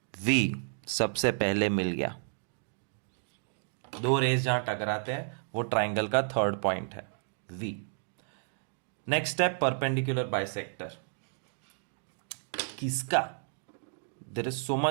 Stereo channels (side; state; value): left; silent; digital silence